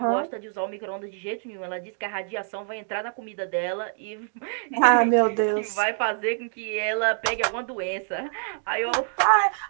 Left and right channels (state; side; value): silent; left; digital silence